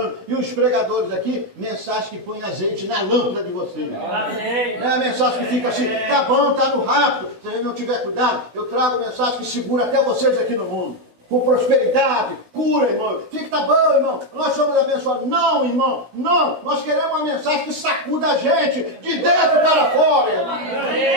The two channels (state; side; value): late; left; 16 ms